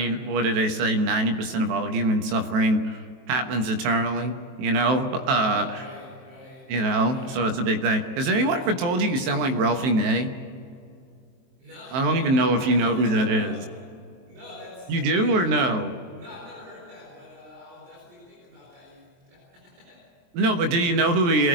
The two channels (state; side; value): late; left; 23 ms